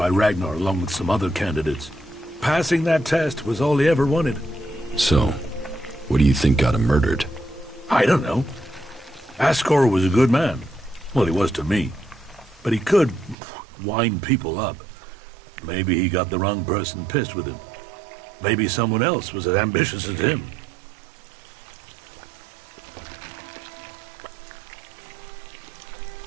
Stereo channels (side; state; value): left; drops out; at 13.4 s